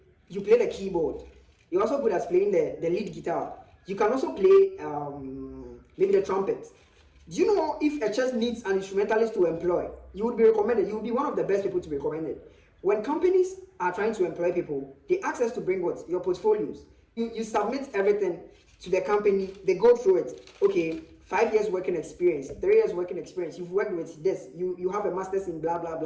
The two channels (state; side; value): identical; both; correlation 1.00